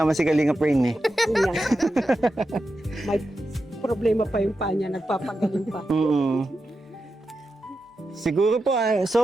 si Kalingap Rain eh. Yan. May problema pa yung paa niya. Nagpapagaling pa. Siguro po,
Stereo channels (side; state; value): both; normal; correlation 0.89